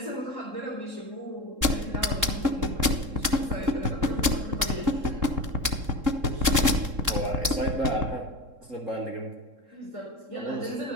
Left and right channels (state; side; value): late; left; 3.7 ms